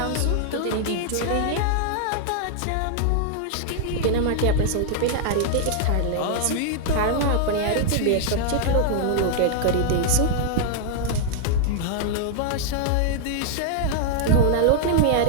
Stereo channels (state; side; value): different; both; correlation -0.01